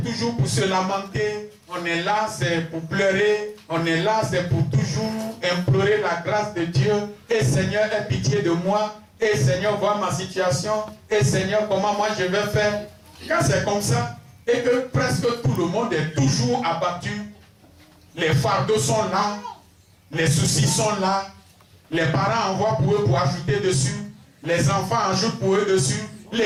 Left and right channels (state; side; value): identical; both; correlation 1.00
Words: toujours pour se lamenter, on est là, c'est pour pleurer, on est là, c'est pour toujours implorer la grâce de Dieu. Et Seigneur, aie pitié de moi. Et Seigneur, vois ma situation. Et Seigneur, comment moi je vais faire. Quand c'est comme ça, et que presque tout le monde est toujours abattu, les fardeaux sont là, les soucis sont là, les parents envoient pour eux pour ajouter dessus, les enfants ajoutent pour eux dessus,